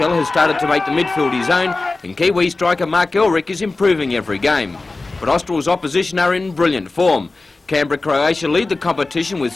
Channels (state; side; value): quieter; right; 3.4 dB